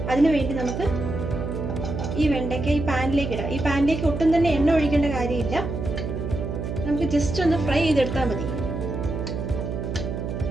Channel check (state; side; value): noise; right; hum, 4 dB below the sound